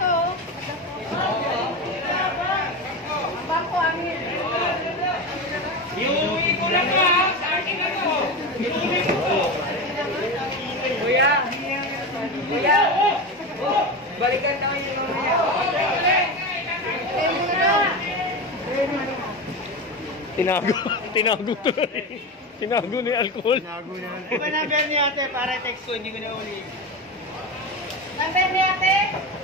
Bangko amin. Iuwi ko lang ha, sa akin ako. Iuwi ko. Kuya. Balikan tayo yung mamaya. Tinago to. Tinago ni alcohol. Di ba number niya ate para text ko, hindi ko na uli. Number ni ate?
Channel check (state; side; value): normal; both; correlation 0.21